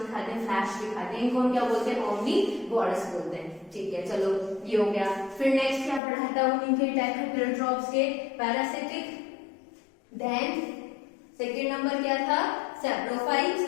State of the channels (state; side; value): drops out; right; at 6.0 s